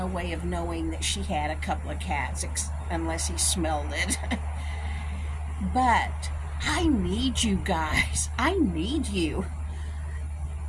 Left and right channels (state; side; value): identical; both; correlation 1.00